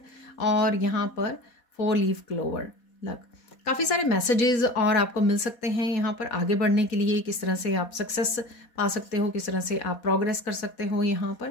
और यहाँ पर 4 लीफ क्लोवर लक। काफ़ी सारे मैसेजेस और आपको मिल सकते हैं यहाँ पर आगे बढ़ने के लिए। किस तरह से आप सक्सेस पा सकते हो, किस तरह से आप प्रोग्रेस कर सकते हो, यहाँ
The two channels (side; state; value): right; late; 4.2 ms